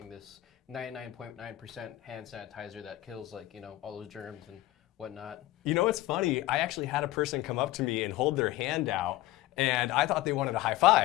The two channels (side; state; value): right; quieter; 16.3 dB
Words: this 99.9% hand sanitizer that kills like, all those germs and whatnot. You know what's funny? I actually had a person come up to me and hold their hand out, and I thought they wanted a high